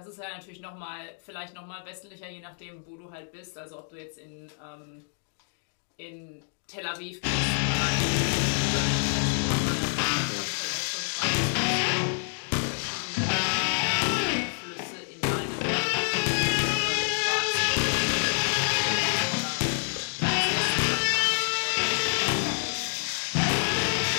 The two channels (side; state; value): right; silent; 60 dB below the other